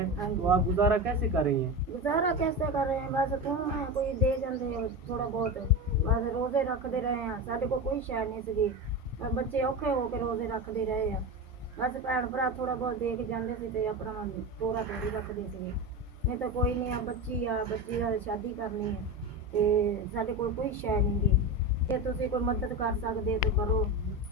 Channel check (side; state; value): both; normal; correlation 0.22